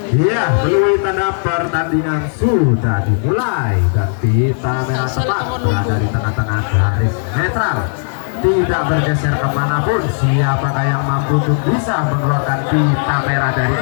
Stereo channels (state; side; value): silent; right; 66 dB below the other